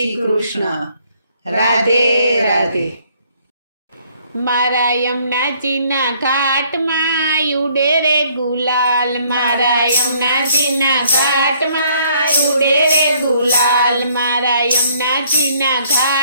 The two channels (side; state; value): both; inverted; correlation -0.64